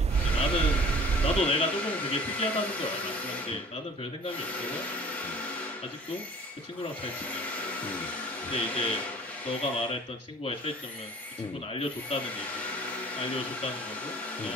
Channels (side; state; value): both; normal; correlation 0.48